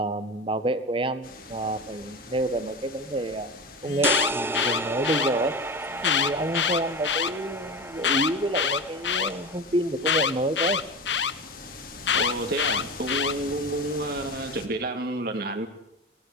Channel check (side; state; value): both; normal; correlation 0.26